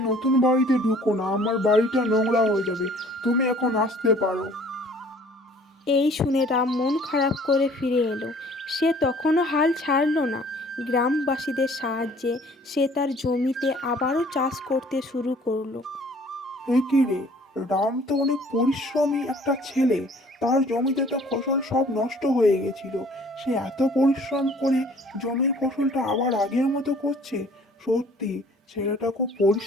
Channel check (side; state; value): both; normal; correlation 0.54